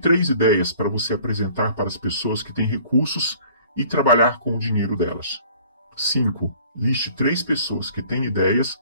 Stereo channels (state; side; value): inverted; both; correlation -0.52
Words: ideias para você apresentar para as pessoas que têm recursos e trabalhar com o dinheiro delas. 5. Liste 3 pessoas que têm ideias